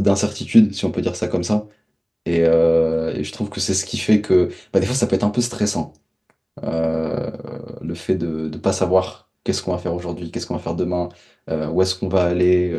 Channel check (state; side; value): identical; both; correlation 1.00